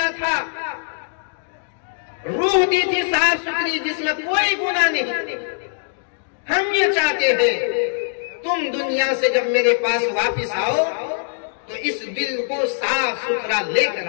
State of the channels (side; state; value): right; silent; digital silence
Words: था, रूह दी थी साफ सुथरी जिसमें कोई गुनाह नहीं। हम ये चाहते हैं तुम दुनिया से जब मेरे पास वापिस आओ तो इस दिल को साफ सुथरा लेकर